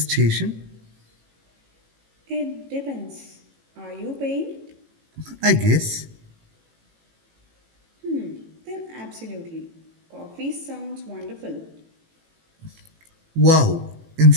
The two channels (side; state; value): left; late; 18 ms